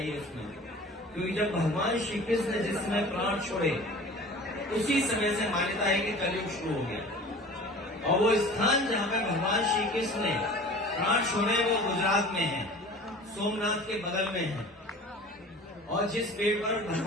है इसमें। क्योंकि जब भगवान श्री कृष्ण ने जिस समय प्राण छोड़े उसी समय से मान्यता है कि कलयुग शुरू हो गया। और वो स्थान जहाँ पे भगवान श्री कृष्ण ने प्राण छोड़े वो गुजरात में है, सोमनाथ के बगल में है। और जिस पेड़ पर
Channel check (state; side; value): normal; both; correlation 0.42